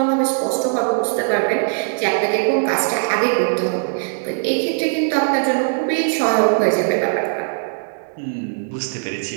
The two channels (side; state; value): left; silent; digital silence